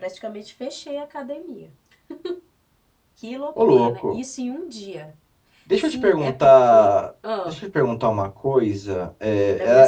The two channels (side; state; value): both; identical; correlation 1.00